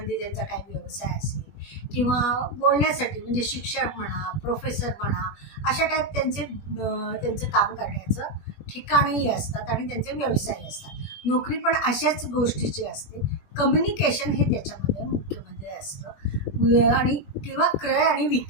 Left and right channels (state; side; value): late; right; 20 ms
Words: त्यांचा काही व्यवसाय असेल किंवा बोलण्यासाठी म्हणजे शिक्षक म्हणा, प्रोफेसर म्हणा, अशा टाईप त्यांचं काम करण्याचं ठिकाणही असतात आणि त्यांचे व्यवसाय असतात. नोकरी पण अशाच गोष्टीची असते. कम्युनिकेशन हे त्याच्यामध्ये मुख्यमध्ये असतं. आणि किंवा क्रय आणि